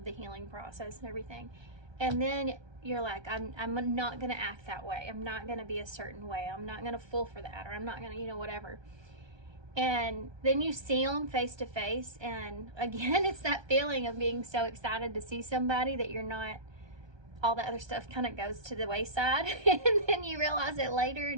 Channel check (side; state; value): left; late; 1.3 ms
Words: the healing process and everything. And then you're like, I'm not going to act that way. I'm not going to be a certain way. I'm not going to fall for that, or I'm not going to, you know, whatever. And then you see them face to face, and again, it's that feeling of being so excited to see somebody that you're not, all the other stuff kind of goes to the wayside, and then you realize it later,